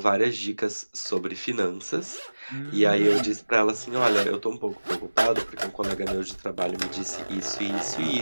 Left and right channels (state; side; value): inverted; both; correlation -1.00